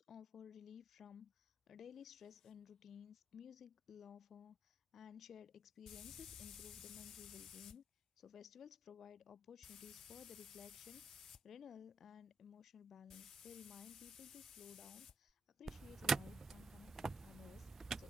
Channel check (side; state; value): both; normal; correlation 0.82